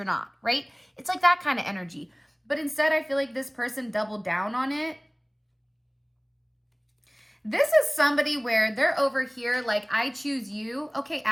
not, right? It's like that kind of energy. But instead, I feel like this person doubled down on it. This is somebody where they're over here like, I choose you. Okay,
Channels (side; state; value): both; identical; correlation 1.00